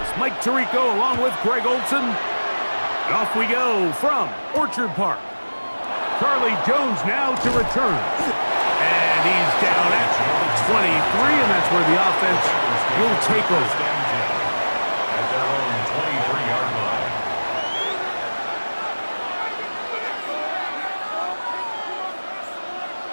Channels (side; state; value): both; inverted; correlation -1.00